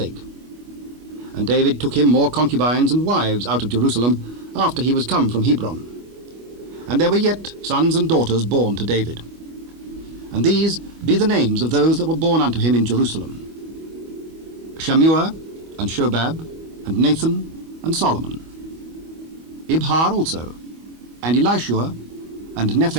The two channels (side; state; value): left; late; 25 ms